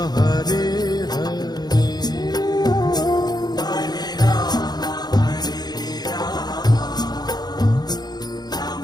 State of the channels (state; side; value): late; right; 0.20 ms